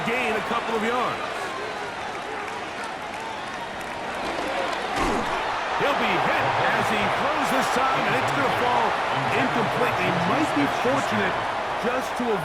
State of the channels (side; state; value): both; identical; correlation 1.00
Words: gain a couple of yards. He'll be hit as he throws this time, and it's going to fall incomplete. He might be fortunate just to